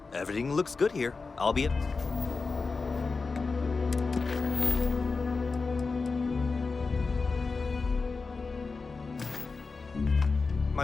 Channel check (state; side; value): quieter; right; 4.3 dB